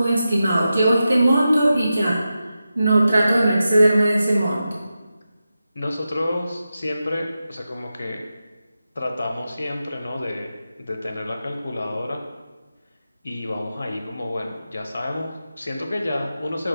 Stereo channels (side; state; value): both; inverted; correlation -0.91